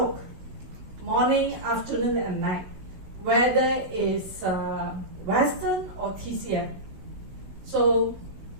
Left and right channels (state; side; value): late; left; 16 ms